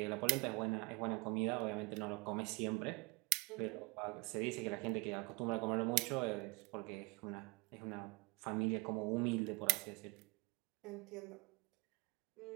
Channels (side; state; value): left; quieter; 28.0 dB